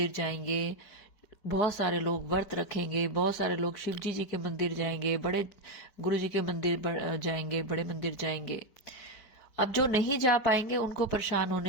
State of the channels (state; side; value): late; right; 4.8 ms